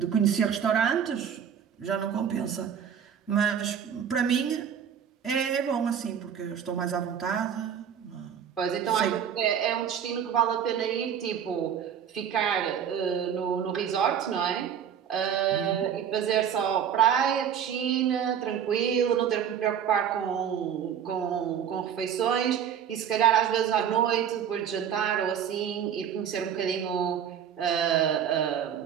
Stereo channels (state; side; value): quieter; left; 8.5 dB